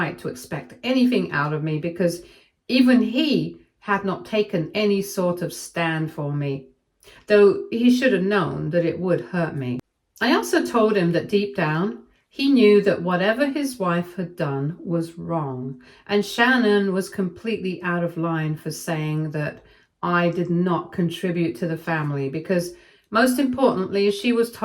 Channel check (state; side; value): identical; both; correlation 1.00